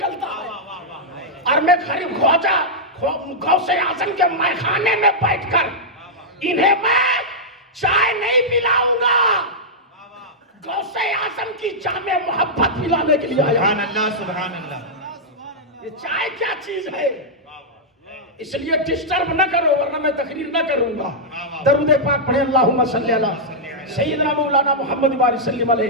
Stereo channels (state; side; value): normal; both; correlation -0.08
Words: ہے، اور میں غریب خواجہ غوث اعظم کے میخانے میں بیٹھ کر انہیں میں چائے نہیں پلاؤں گا، غوث اعظم کی جامع محبت پلانے کے لیے آیا۔ سبحان اللہ۔ یہ چائے کیا چیز ہے؟ اس لیے ڈسٹرب نہ کرو ورنہ میں تقریر نہ کروں گا۔ درود پاک پڑھیں، اللہم صلی علی سیدنا مولانا محمد وآلہ وسلم